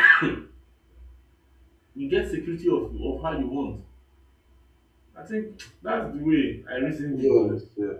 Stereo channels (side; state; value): both; identical; correlation 1.00